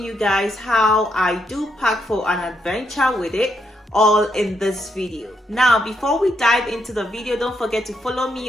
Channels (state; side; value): normal; both; correlation 0.78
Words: you guys how I do pack for an adventure with it, all in this video. Now, before we dive into the video, don't forget to follow me